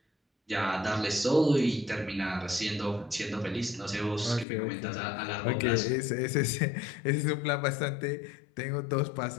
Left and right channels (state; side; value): drops out; right; at 4.5 s